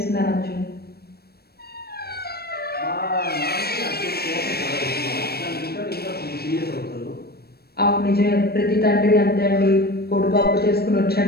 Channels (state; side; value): late; right; 0.46 ms